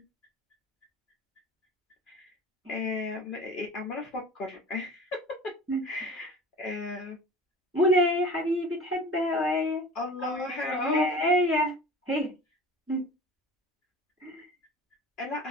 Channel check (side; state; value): both; normal; correlation 0.40